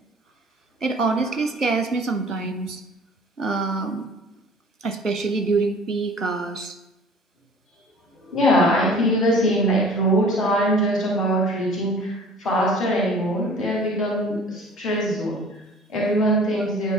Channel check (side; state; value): both; normal; correlation 0.48